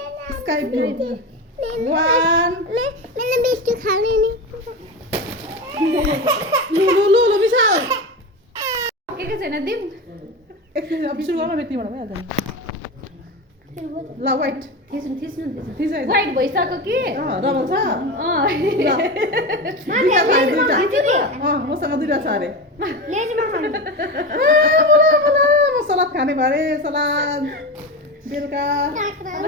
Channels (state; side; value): normal; both; correlation 0.22